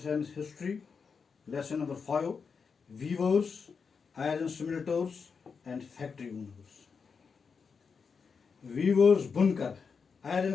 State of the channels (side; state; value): right; quieter; 5.6 dB